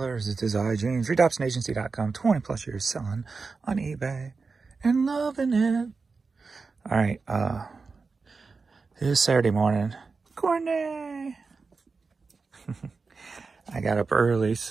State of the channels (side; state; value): left; quieter; 4.5 dB